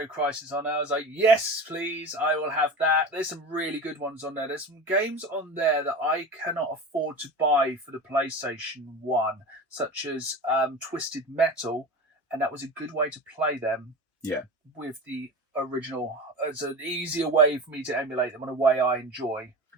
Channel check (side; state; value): both; normal; correlation 0.30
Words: Crisis on. I was like, yes, please, I will have that. There's some really good ones on there. There's some games on there that I cannot afford to buy for the PlayStation 1, such as Twisted Metal, and that was a good way to play them. Yeah. With the original. It's an easier way for me to emulate them in a way I enjoy.